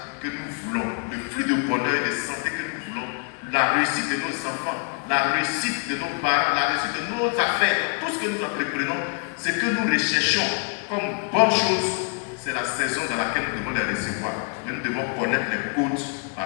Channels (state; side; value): quieter; right; 37.2 dB